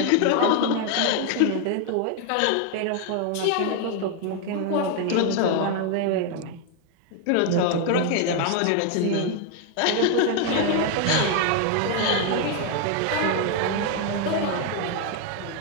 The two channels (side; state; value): both; different; correlation 0.00